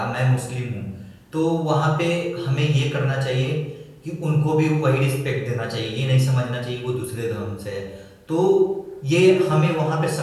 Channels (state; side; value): identical; both; correlation 1.00